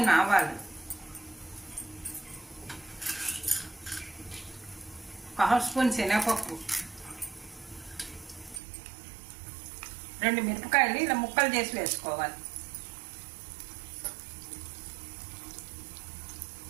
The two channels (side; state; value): left; drops out; at 8.6 s